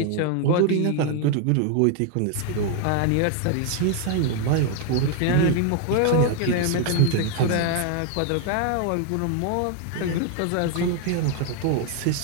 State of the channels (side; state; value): both; different; correlation 0.00